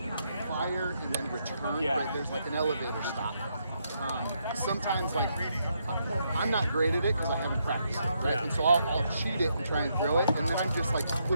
fire and then return, right? There's like an elevator stop. Sometimes like, I'm not great at it because I haven't practiced it, right? And so I'll cheat it and try and throw it, and then I'm just like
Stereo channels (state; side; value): inverted; both; correlation -0.77